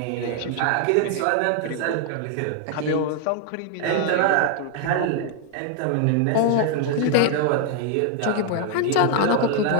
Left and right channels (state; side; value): different; both; correlation 0.00